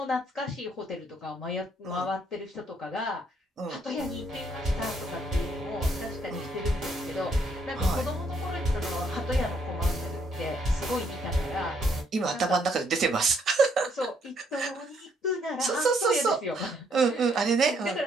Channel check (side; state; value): both; normal; correlation 0.70